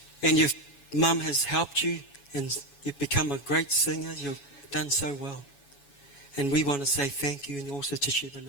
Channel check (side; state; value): right; late; 7.1 ms